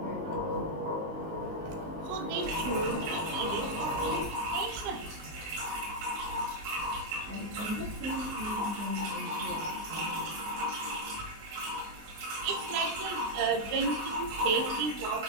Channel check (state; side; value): late; left; 19 ms